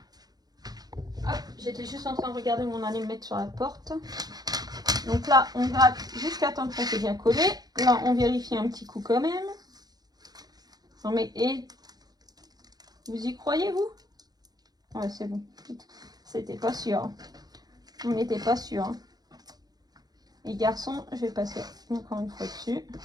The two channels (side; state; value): left; late; 0.19 ms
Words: Hop, j'étais juste en train de regarder où on allait le mettre sur la porte. Donc là, on gratte jusqu'à temps que ça soit bien collé. Là, on vérifie un petit coup quand même. Non mais, et vous y croyez, vous? Ouais, c'est bon. C'était pas sûr. On n'était pas sûr. Hein. Les garçons, je vais passer encore une fois dessus.